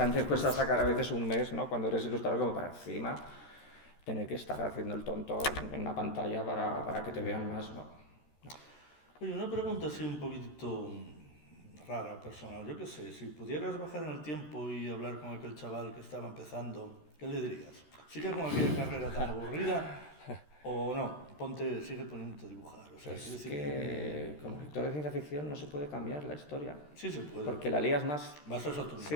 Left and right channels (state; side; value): late; right; 13 ms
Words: cuesta sacar a veces un mes, ¿no? Cuando eres ilustrador como para encima tener que estar haciendo el tonto en una pantalla para que te vean más, ¿no? Oye, una pregunta así un poquitito rara, personal. Yo qué sé, si pudieras bajar en el tiempo y hablar con aquel chaval que estaba empezando, ¿qué le dirías? ¿Sigue con aquella carrera tan aburrida o no? Sigue poniéndote a dibujar. O sea, Es que como lector de ciencia ficción no se puede cambiar la historia. Sí se puede. Porque la lías más. Vas a otro Sí.